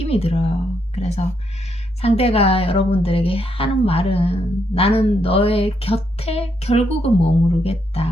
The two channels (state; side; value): normal; both; correlation 0.77